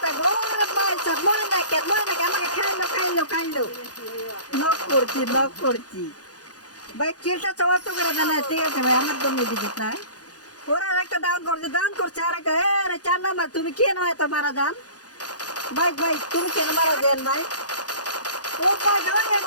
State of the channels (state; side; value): late; right; 0.68 ms